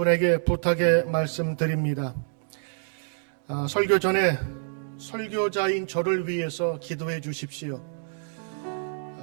부탁의 말씀드립니다. 설교 전에 설교자인 저를 위해서 기도해 주십시오.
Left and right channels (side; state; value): left; silent; digital silence